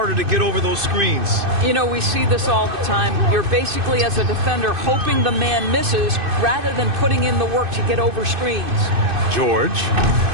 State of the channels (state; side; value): late; left; 2.6 ms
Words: to get over those screens. You know, we see this all the time. You're basically, as a defender, hoping the man misses rather than putting in the work to get over screens. George.